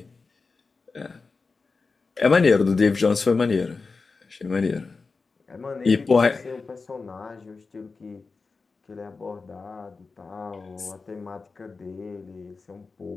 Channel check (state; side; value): quieter; right; 4.3 dB